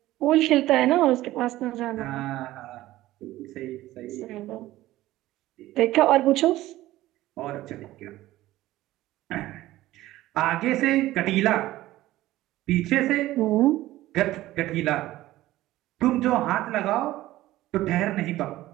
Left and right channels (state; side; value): quieter; left; 16.0 dB